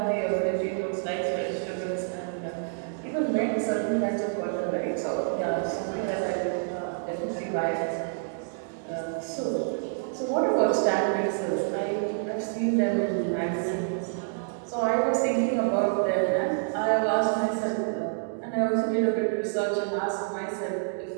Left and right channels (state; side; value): silent; left; digital silence